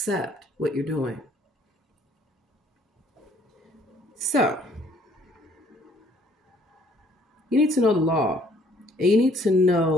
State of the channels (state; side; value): normal; both; correlation 0.61